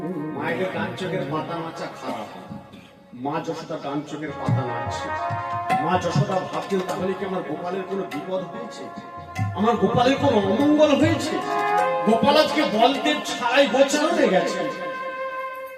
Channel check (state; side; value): identical; both; correlation 1.00